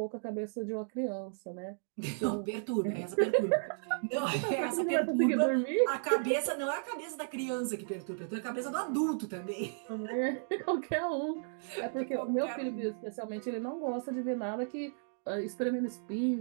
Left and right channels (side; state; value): left; silent; digital silence